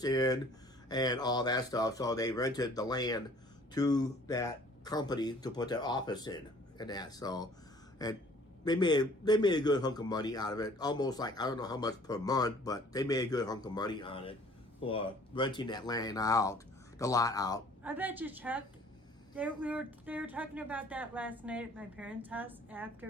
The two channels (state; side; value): normal; both; correlation 0.54